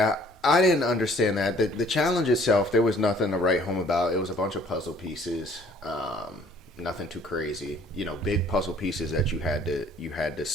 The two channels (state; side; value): normal; both; correlation 0.57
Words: I didn't understand that. The challenge itself, there was nothing to write home about. It was a bunch of puzzle pieces. Nothing too crazy. Big puzzle pieces that you had to